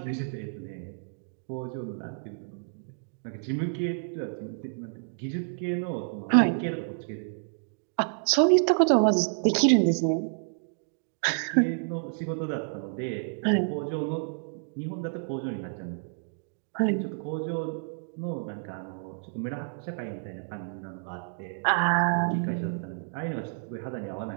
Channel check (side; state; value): left; silent; digital silence